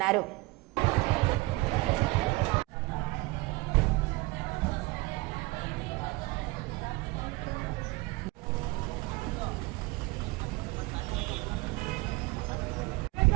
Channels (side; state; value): left; quieter; 22.9 dB